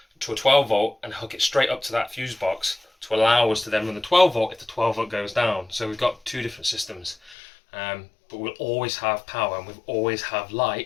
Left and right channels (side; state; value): right; drops out; at 7.4 s